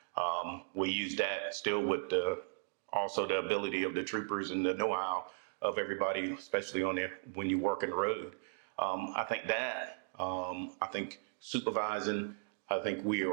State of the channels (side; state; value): left; silent; digital silence